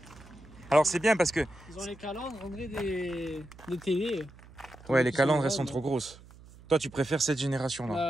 Alors c'est bien parce que... Ils ont les calandres, on dirait des télés. Ouais, les calandres, elles sont trop grosses. Toi, tu préfères cette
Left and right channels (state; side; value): noise; right; hum, 21 dB below the sound